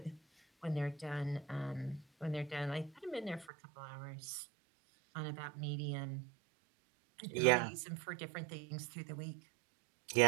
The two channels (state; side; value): drops out; left; at 3.5 s